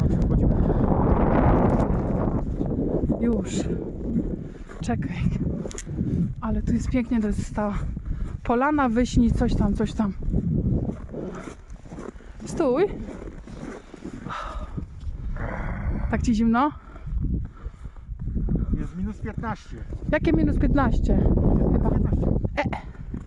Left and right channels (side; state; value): both; identical; correlation 1.00